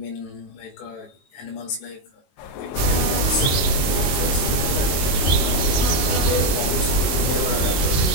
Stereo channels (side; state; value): right; late; 22 ms